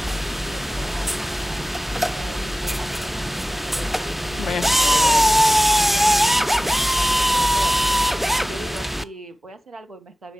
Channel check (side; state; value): both; normal; correlation 0.96